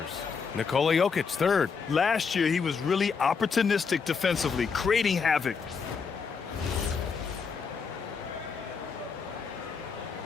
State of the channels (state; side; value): quieter; right; 5.7 dB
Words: Nikola Jokic, 3rd. Last year, he was really opportunistic defensively, creating havoc.